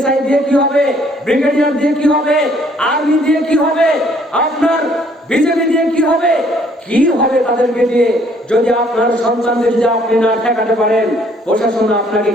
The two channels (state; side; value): normal; both; correlation 0.63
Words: দিয়ে কি হবে? ব্রিগেডিয়ার দিয়ে কি হবে? আর্মি দিয়ে কি হবে? আপনার বিজেপি দিয়ে কি হবে? কি হবে তাদেরকে দিয়ে? যদি আপনার সন্তানদের যদি আপনি না ঠেকাতে পারেন, প্রশাসন আপনাকে